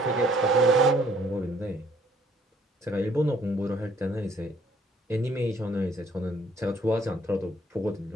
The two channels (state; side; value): normal; both; correlation 0.62